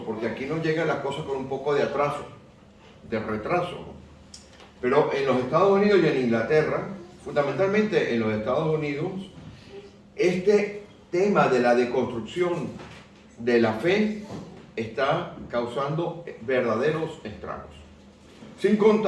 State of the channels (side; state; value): both; identical; correlation 1.00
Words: porque aquí nos llegan las cosas con un poco de atraso, de retraso. Pero en los Estados Unidos y en Inglaterra, fundamentalmente en los Estados Unidos, este tema de la deconstrucción de la fe está causando verdaderos estragos. Sin